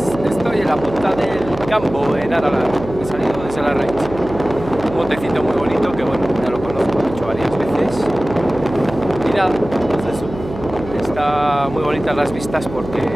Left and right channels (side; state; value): right; noise; hum, 12 dB below the sound